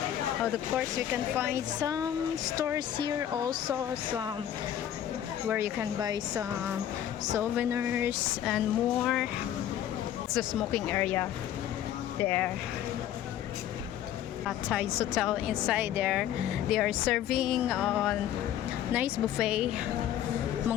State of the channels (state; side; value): quieter; right; 11.0 dB